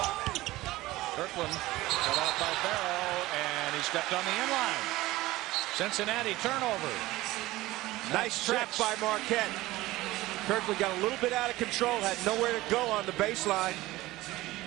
Kirkland cut off by Barrow, and he stepped on the inline. Cincinnati turnover. Nice trap by Marquette. Kirkland got a little bit out of control, had nowhere to go on the baseline.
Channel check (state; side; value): quieter; left; 18.1 dB